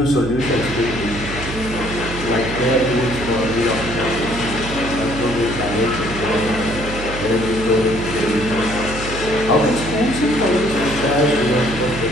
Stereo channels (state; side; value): noise; right; hum, 9 dB below the sound